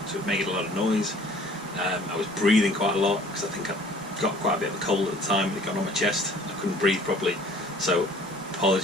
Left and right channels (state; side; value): normal; both; correlation 0.52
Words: so it made a lot of noise. I was breathing quite a lot because I think I got quite a bit of a cold at the time. It got on my chest. I couldn't breathe properly, so